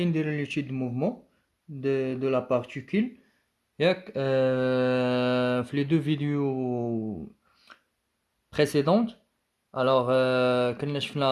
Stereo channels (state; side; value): identical; both; correlation 1.00